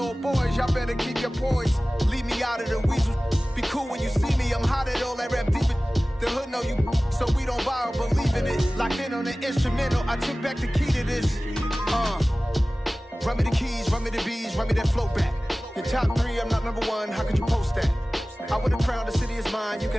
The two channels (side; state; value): both; normal; correlation 0.97